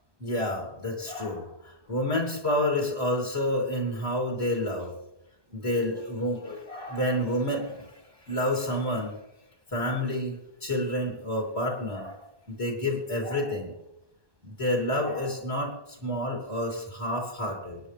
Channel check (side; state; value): left; late; 1.2 ms